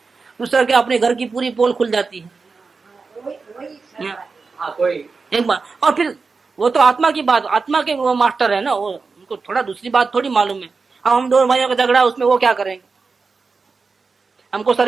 दूसरा क्या, अपने घर की पूरी पोल खुल जाती है एक बार। और फिर वो तो आत्मा की बात, आत्मा के वो मास्टर है ना, वो उनको थोड़ा दूसरी बात थोड़ी मालूम है। अब हम दो भाइयों का झगड़ा, उसमें वो क्या करेंगे, हमको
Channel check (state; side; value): quieter; left; 4.5 dB